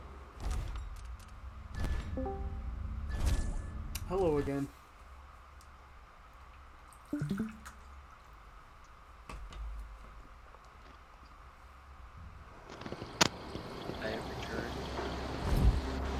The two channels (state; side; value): identical; both; correlation 1.00